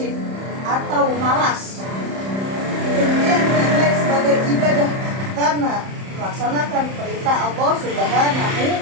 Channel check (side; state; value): left; late; 31 ms